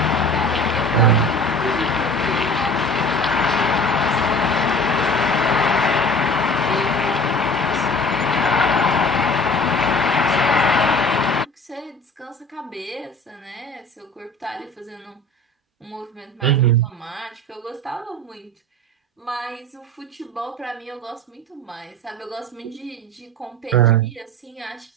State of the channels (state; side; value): normal; both; correlation 0.43